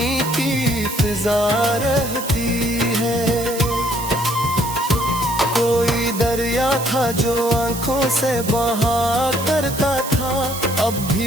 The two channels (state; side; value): noise; right; hiss, 9 dB below the sound